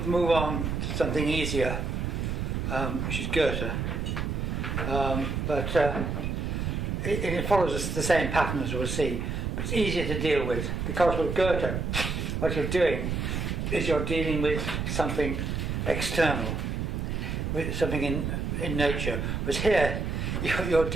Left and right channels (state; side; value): noise; right; rumble, 2 dB below the sound